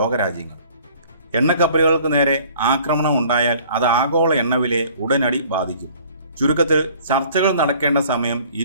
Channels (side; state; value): both; inverted; correlation -0.53